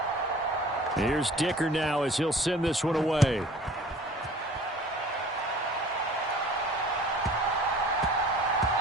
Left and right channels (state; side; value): normal; both; correlation 0.47